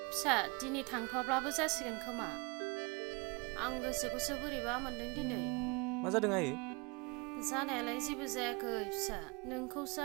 फिसा दिनै थांथ'वाब्लाबो जासिगोन खोमा आं गोसोखौसो बोरैबा मोनदों दिनै मा जादों आयै जानायालाय जेबो जायाखै फिसा नोंखौसो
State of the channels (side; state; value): left; quieter; 29.0 dB